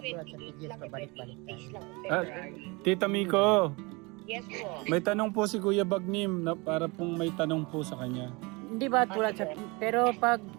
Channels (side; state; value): left; quieter; 26.7 dB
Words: sa PGS pabalik-balik tayo? Tita Miko, Yes po. may tanong po si Kuya Bagnim na para pong may tanong po sa kanya. Hindi ba tulad sa... Pero pag